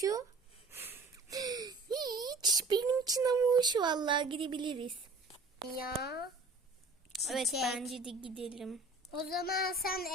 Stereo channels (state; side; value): quieter; left; 3.3 dB